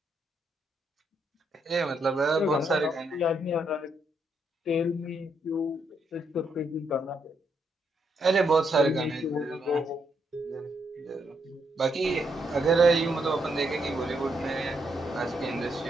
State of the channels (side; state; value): both; normal; correlation 0.77